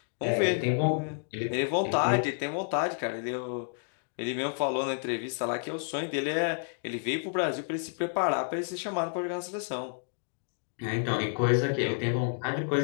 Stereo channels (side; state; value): right; silent; digital silence